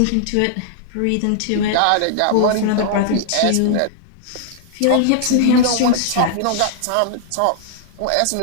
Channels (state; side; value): different; both; correlation -0.01